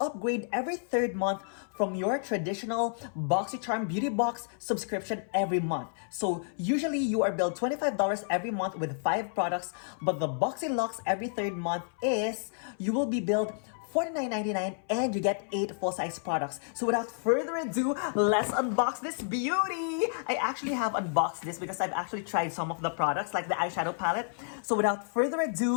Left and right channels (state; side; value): silent; right; 57 dB below the other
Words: every third month from your traditional Boxycharm Beauty Box subscription every month. So usually you are billed $25 every month with 5 products, but the Boxylux every third month is you will be billed $49.99 and you get 8 full-size products. So without further ado, let's unbox this beauty. I actually have unboxed this because I've actually tried some of the products like the eyeshadow palette. So without further